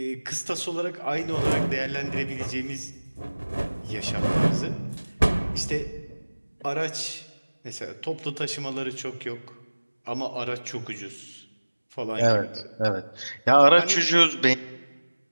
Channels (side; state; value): both; inverted; correlation -1.00